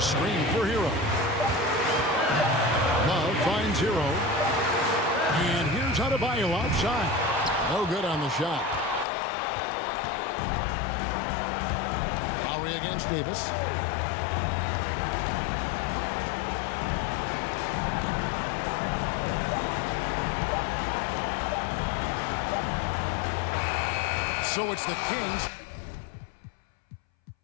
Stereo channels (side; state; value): right; drops out; at 9.1 s